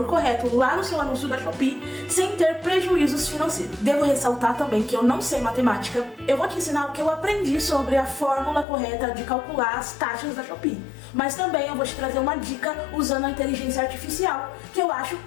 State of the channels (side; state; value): right; drops out; at 8.7 s